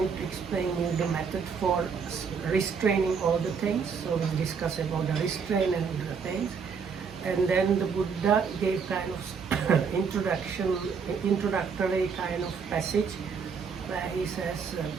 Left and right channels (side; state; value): left; quieter; 6.0 dB